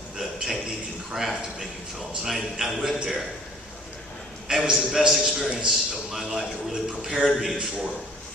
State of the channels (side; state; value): both; normal; correlation 0.53